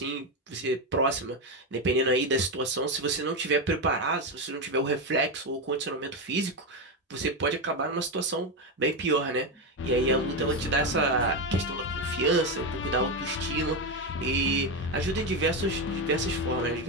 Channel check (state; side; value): normal; both; correlation 0.11